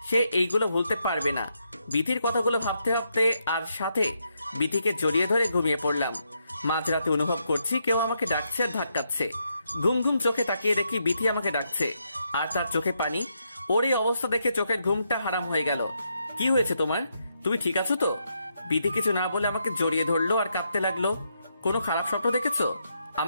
সে এইগুলো ভুলতে পারবে না। বিথির কথাগুলো ভাবতে ভাবতে আর সাথে বিথিকে জড়িয়ে ধরে ঘুমিয়ে পড়লাম। মাঝরাতে অনুভব করছি কেউ আমাকে ডাকছে আর ধাক্কাচ্ছে। ঘুম ঘুম চোখে তাকিয়ে দেখি বিথি আমাকে ডাকছে, আর তার চোখে পানি। ওর এই অবস্থা দেখে চোখের ঘুমটা হারাম হয়ে গেল। কি হয়েছে তোমার? তুমি ঠিক আছো তো? বিধি কিছু না বলে আমাকে জড়িয়ে ধরলো আর কাঁদতে লাগলো। কোনো খারাপ স্বপ্ন দেখেছো?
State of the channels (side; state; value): both; inverted; correlation -0.79